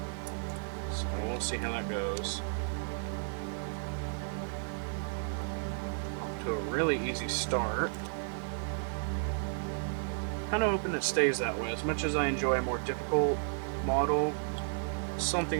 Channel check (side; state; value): left; silent; 56 dB below the other